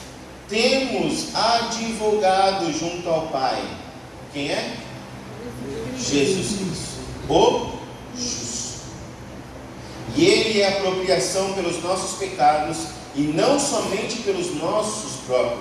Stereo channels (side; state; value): both; identical; correlation 1.00